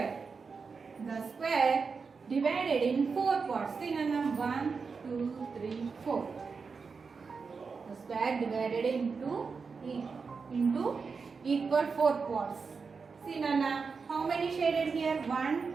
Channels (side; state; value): left; quieter; 5.1 dB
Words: The square divided in 4 parts. Sinana, 1, 2, 3, 4. The square divided into equal 4 parts. See Nana, how many shaded here? 1,